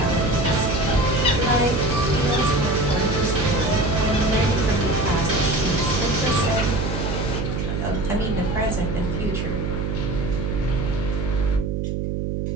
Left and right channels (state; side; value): noise; right; hum, 1 dB below the sound